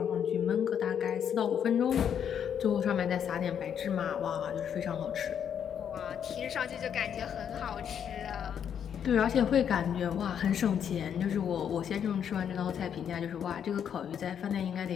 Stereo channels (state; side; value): quieter; right; 8.5 dB